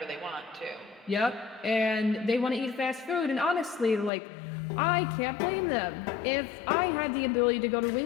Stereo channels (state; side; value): drops out; right; at 4.1 s